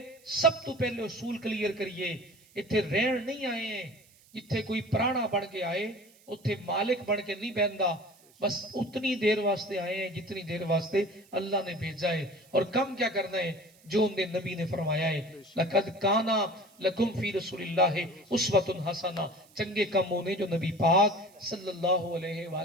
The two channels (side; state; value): right; noise; hiss, 28 dB below the sound